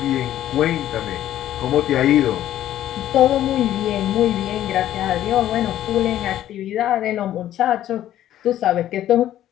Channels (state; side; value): quieter; right; 12.4 dB